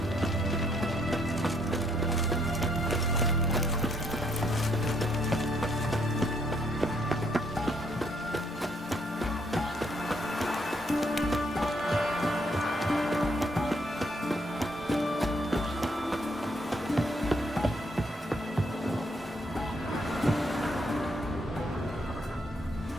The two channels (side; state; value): both; normal; correlation 0.71